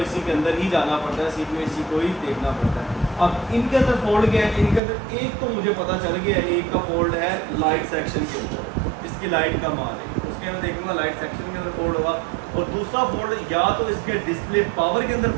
IC के अंदर ही जाना पड़ता है, CPU IC को ही देखना पड़ता है। अब इनके अंदर फोल्ड क्या है, इनके अंदर एक तो मुझे पता चल गया, एक का फोल्ड है लाइट सेक्शन के ऊपर, इसकी लाइट का माल है, उसके अंदर देखूंगा लाइट सेक्शन के अंदर फोल्ड होगा। और दूसरा फोल्ड या तो इसके डिस्प्ले पावर के अंदर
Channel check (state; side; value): drops out; left; at 4.8 s